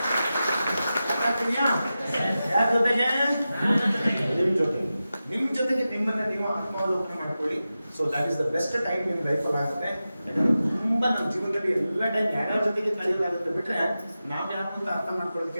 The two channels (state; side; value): inverted; both; correlation -0.93